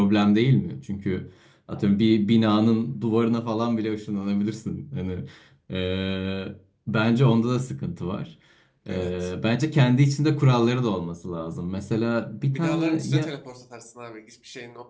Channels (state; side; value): identical; both; correlation 1.00